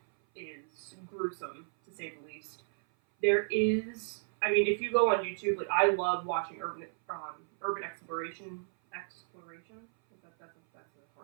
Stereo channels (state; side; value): silent; left; 56 dB below the other